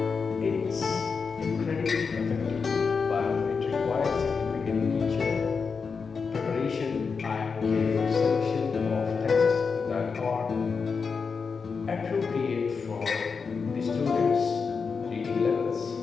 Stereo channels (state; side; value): quieter; right; 5.3 dB